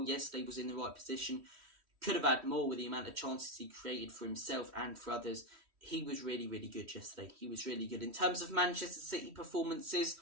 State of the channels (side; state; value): left; late; 3.1 ms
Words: yesterday, was in the right position. Could have had more with the amount of chances he created for himself and for others. He was really, really good yesterday. He was really good. In terms of Manchester City performances,